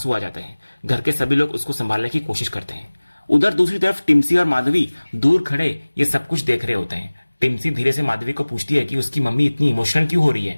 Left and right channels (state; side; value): inverted; both; correlation -1.00